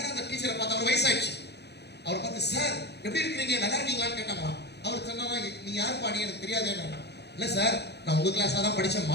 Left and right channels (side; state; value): right; late; 0.48 ms